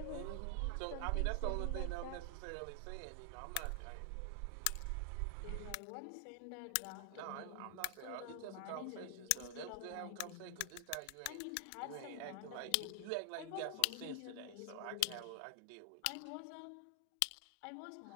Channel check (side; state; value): both; different; correlation 0.00